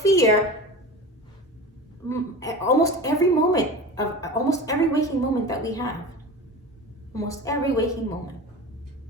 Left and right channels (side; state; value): both; normal; correlation 0.32